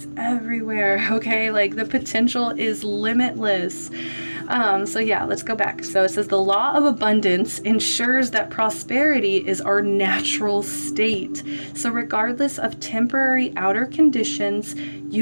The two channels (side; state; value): both; inverted; correlation -1.00